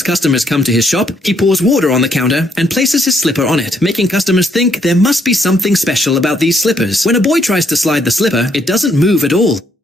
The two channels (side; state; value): both; normal; correlation 0.72